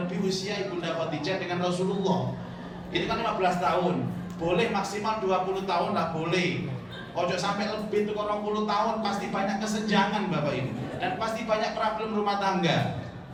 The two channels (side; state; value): both; identical; correlation 1.00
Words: usia Ibunda Khadijah dengan Rasulullah. Itu kan 15 tahun. boleh maksimal 20 tahun lah boleh. Ojo sampai lebih tuh 20 tahun, pasti banyak kesenjangan Bapak Ibu, dan pasti banyak problem rumah tangga.